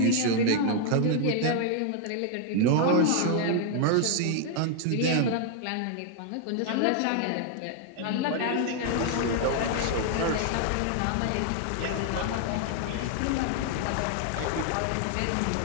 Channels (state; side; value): different; both; correlation 0.00